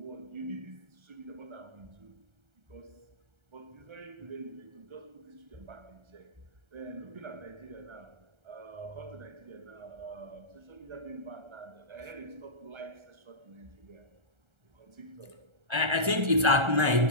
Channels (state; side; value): late; left; 1.3 ms